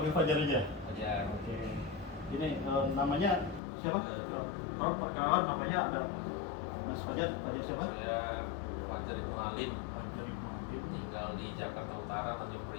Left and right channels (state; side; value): drops out; right; at 3.6 s